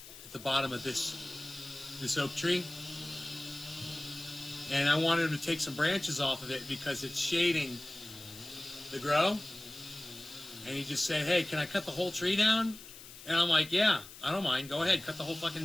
at the bottom of this oak tree, and I wanted him to take some branches off of it because it's shading the grow. And he just said, "Hey, can I cut the whole tree down?" And I'm like, "Yeah, I don't mind. Go ahead, cut the whole fucking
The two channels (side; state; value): left; noise; hiss, 16 dB below the sound